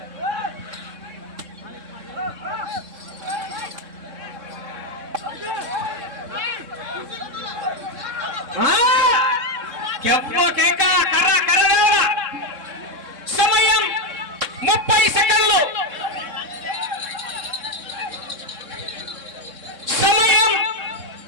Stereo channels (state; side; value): late; left; 3.6 ms